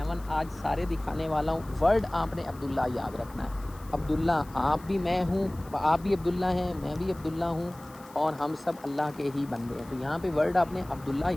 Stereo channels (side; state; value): left; noise; hiss, 23 dB below the sound